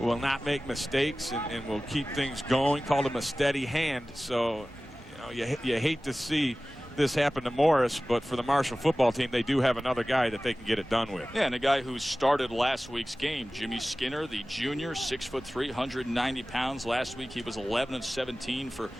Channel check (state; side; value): normal; both; correlation 0.97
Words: not make mistakes and will keep things going. Called him a steady hand. So, you know, you hate to see this happen to Morris, but for the Marshall football team, they do have another guy that they can get it done with. Yeah, and a guy who started last week's game, Jimmy Skinner, the junior, 6'3", 190 pounds. Last week he was 11 of 17 for